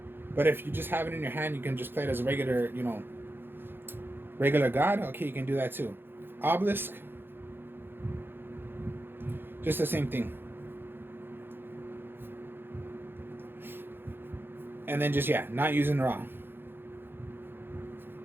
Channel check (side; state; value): left; late; 0.10 ms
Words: But if you just have it in your hand, you can just play it as a regular, regular god. Okay, you can do that too. Obelisk. Just the same thing. And then just, yeah, not using Ra.